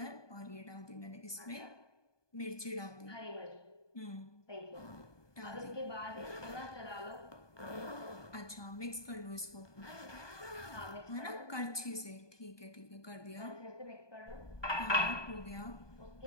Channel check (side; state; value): right; late; 1.2 ms